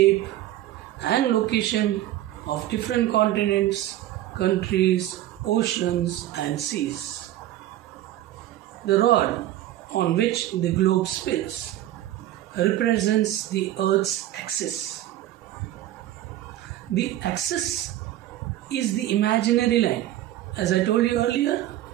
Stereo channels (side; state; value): left; quieter; 13.8 dB